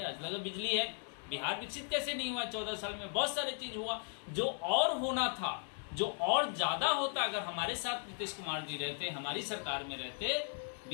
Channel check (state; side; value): silent; right; 53 dB below the other